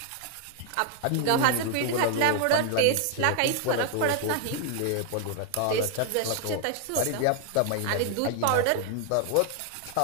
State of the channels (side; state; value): both; different; correlation 0.00